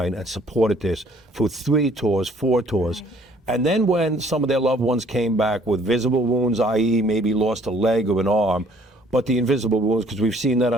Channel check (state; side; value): normal; both; correlation 0.59